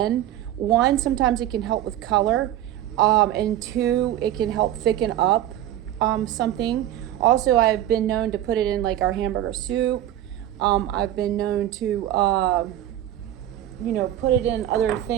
1, sometimes it can help with color, and 2, it can help thicken up something. Also, I've been known to put it in like our hamburger soup. I've been known to, you know, put it in other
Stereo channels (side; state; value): left; quieter; 12.5 dB